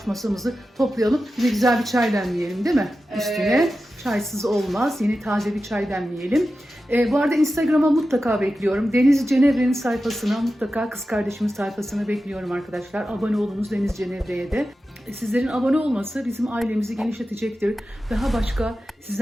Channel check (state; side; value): normal; both; correlation 0.92